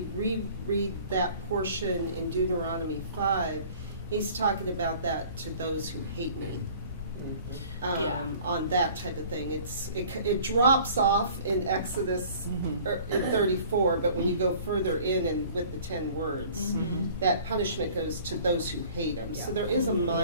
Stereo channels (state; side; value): inverted; both; correlation -0.50